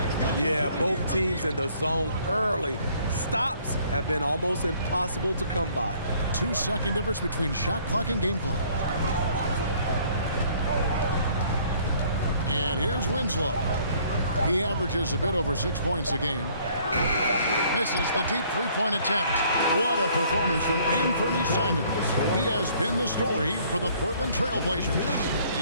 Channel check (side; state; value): both; inverted; correlation -0.59